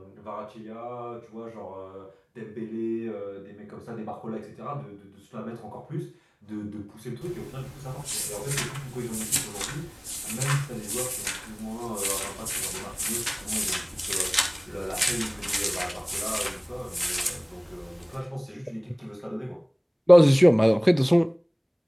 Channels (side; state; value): both; identical; correlation 1.00